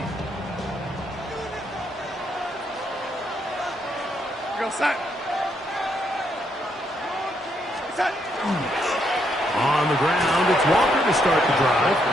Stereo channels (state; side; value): normal; both; correlation 0.75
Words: Go set. Set. On the ground, it's Walker to start the drive.